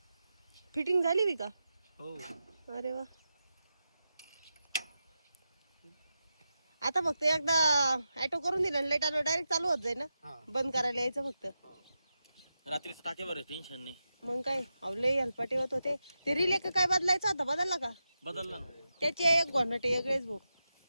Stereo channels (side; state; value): both; inverted; correlation -0.89